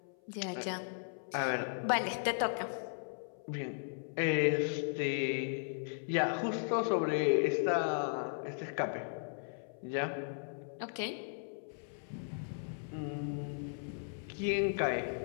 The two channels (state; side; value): silent; right; 53 dB below the other